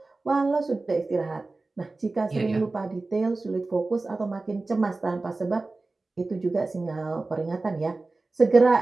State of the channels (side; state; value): left; quieter; 3.4 dB